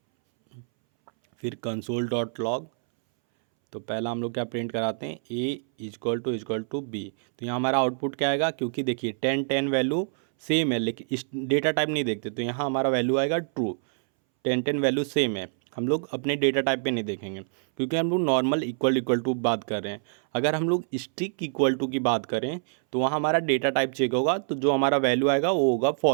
फिर कंसोल डॉट लॉग, तो पहला हम लोग क्या प्रिंट कराते हैं, ए इजक्वल टू बी। तो यहाँ हमारा आउटपुट क्या आएगा, क्योंकि देखिए 10 10 वैल्यू सेम है लेकिन इस डेटा टाइप नहीं देखते, तो यहाँ हमारा वैल्यू आएगा ट्रू। 10 10 वैल्यू सेम है, हम लोग अपने डेटा टाइप पे नहीं देखेंगे क्योंकि हम लोग नॉर्मल इक्वल टू बात कर रहे हैं। अगर हम लोग स्ट्रिक इक्वल टू की बात करें तो वहाँ हमारा डेटा टाइप चेक होगा, तो जो हमारा वैल्यू आएगा वो होगा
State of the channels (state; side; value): silent; left; 61 dB below the other